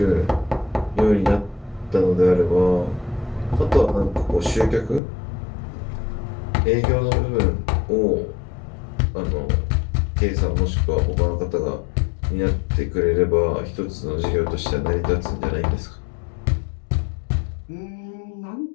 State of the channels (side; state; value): right; drops out; at 5.0 s